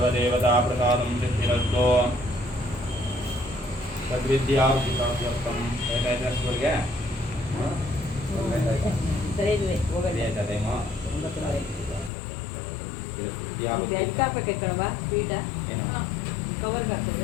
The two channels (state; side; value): drops out; right; at 12.1 s